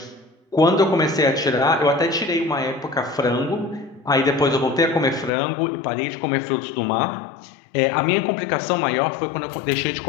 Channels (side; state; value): right; drops out; at 5.3 s